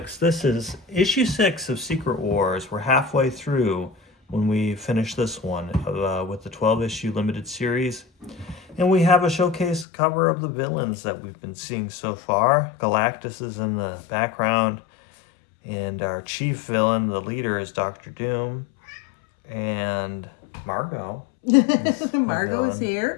This is issue 6 of Secret Wars. We're halfway through when we finish this one with the 12-issue limited series. And we have a showcase cover of the villains that we've been seeing so far. Galactus is in the background, and our chief villain, the leader, is Doctor Doom. And Margot. Margot is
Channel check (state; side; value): drops out; right; at 9.9 s